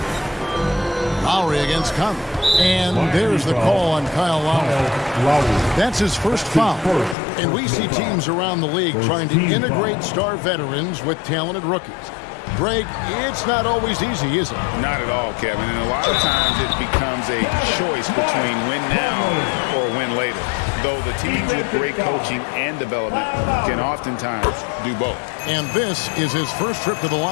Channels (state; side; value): drops out; right; at 7.2 s